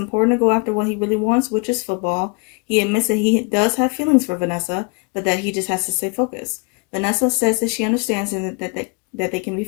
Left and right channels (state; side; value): quieter; right; 32.8 dB